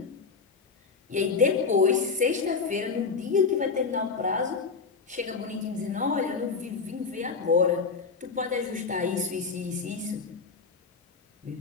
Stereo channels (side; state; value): right; quieter; 4.9 dB